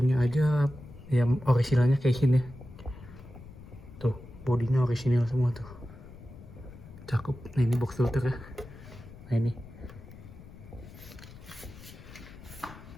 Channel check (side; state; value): left; noise; rumble, 17 dB below the sound